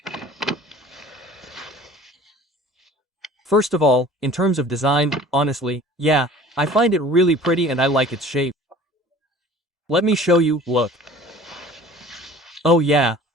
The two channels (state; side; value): normal; both; correlation 0.46